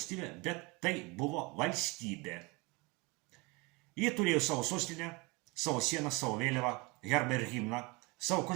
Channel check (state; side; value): quieter; left; 24.2 dB